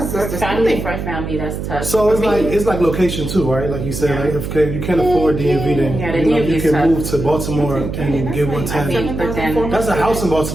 family for family. That's tough. So it's like location too, right? Like you said, like if you can't afford DMV, then you can move to Baltimore and get 110. That's a house in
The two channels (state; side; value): noise; right; hum, 5 dB below the sound